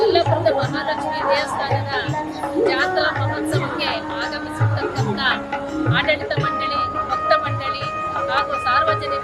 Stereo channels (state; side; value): identical; both; correlation 1.00